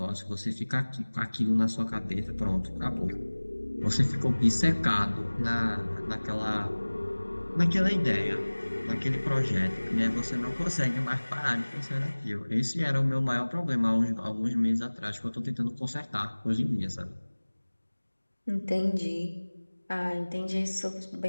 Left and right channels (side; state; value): both; inverted; correlation -1.00